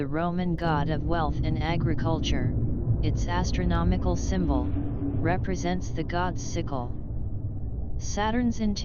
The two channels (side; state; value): both; identical; correlation 1.00